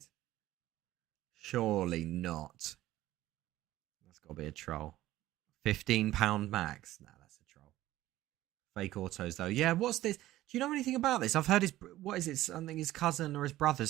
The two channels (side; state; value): left; quieter; 15.3 dB